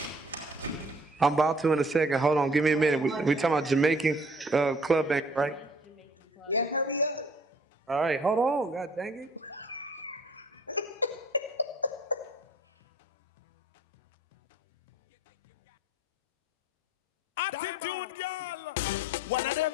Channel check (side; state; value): both; normal; correlation 0.55